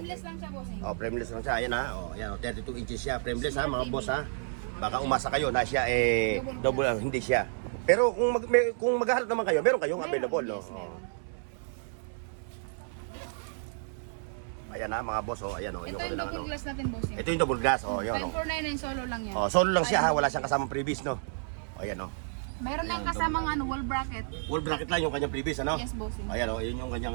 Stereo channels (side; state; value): left; silent; 57 dB below the other